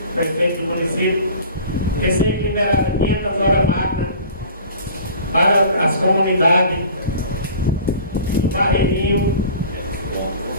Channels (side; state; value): both; inverted; correlation -0.43